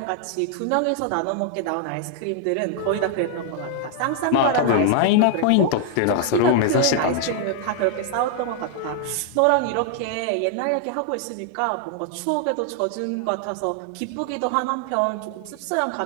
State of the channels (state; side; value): different; both; correlation 0.00